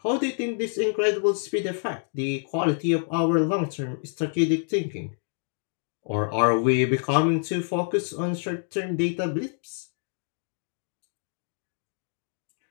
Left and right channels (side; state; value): right; silent; digital silence